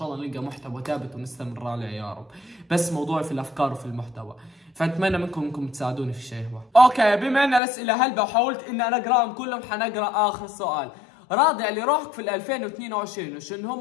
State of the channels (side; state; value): right; drops out; at 7.6 s